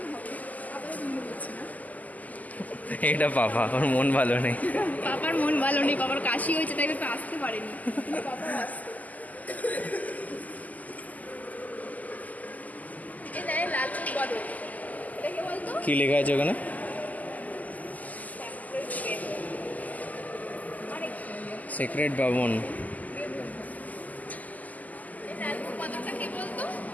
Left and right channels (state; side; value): late; right; 0.079 ms